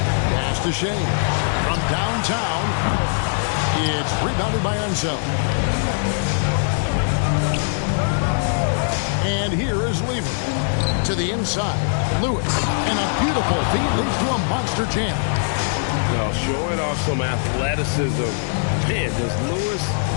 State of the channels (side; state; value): right; silent; digital silence